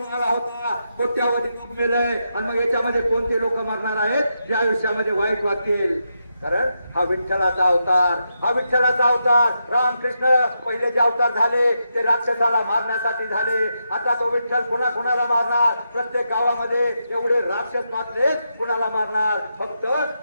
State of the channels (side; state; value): both; inverted; correlation -0.85